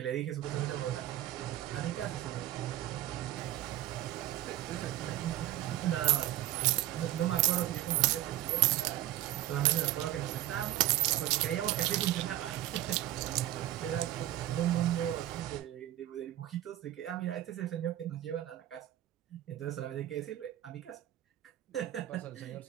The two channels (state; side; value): quieter; left; 14.2 dB